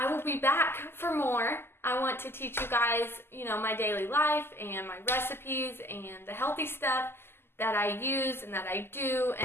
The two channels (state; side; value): late; right; 0.12 ms